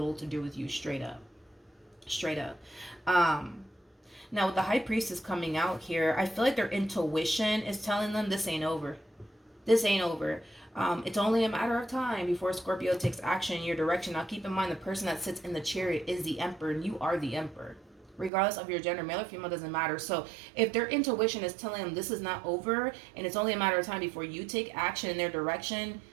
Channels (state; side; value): drops out; left; at 18.3 s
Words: to do with you, straight up. Straight up. Now, with the High Priestess coming out here, I feel like their intuition is telling them this ain't over. This ain't over. It's only a matter of time before Scorpio takes action in your direction. Now, keep in mind, the person that sits in the Chariot is the Emperor, and you are the Emperor. Regardless of your gender, male or female, doesn't matter. So if their intuition is telling them this is not over, and it's only a matter of time before you take action in their direction,